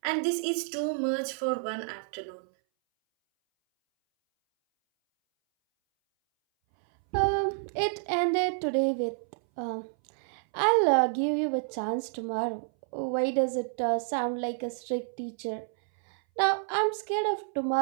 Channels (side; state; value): left; silent; 58 dB below the other